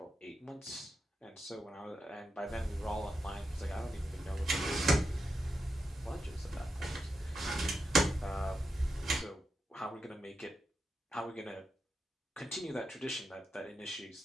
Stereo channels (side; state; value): both; normal; correlation 0.87